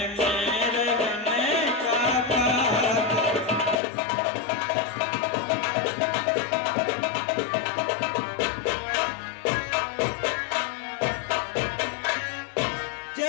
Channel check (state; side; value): drops out; right; at 3.8 s